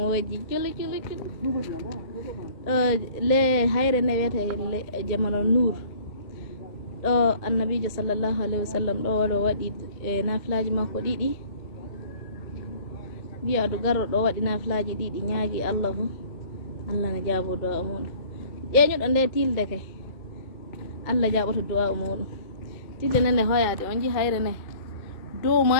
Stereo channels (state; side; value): late; right; 2.1 ms